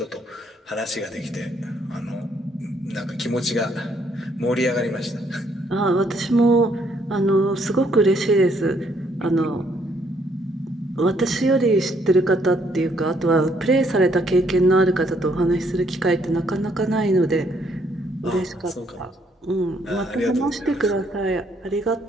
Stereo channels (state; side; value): normal; both; correlation 0.69